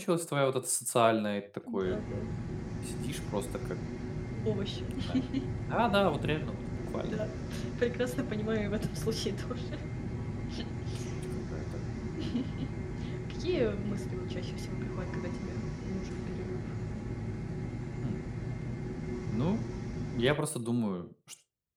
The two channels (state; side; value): identical; both; correlation 1.00